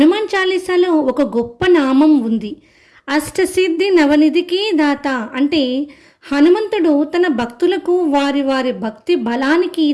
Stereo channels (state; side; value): identical; both; correlation 1.00